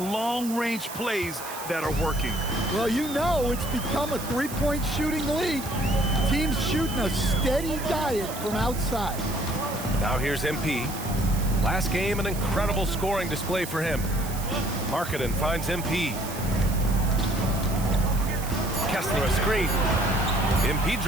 plays that are working. Well, you know it's become a three-point shooting league. Teams shooting a steady diet from outside. Now here's MP. Last game, an incredible scoring display for him. Markkanen finds MP. Kessler a screen. MP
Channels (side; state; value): right; noise; hiss, 11 dB below the sound